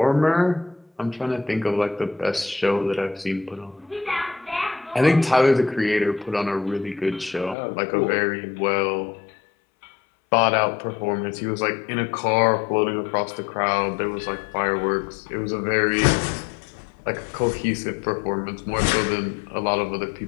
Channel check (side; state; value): right; drops out; at 7.6 s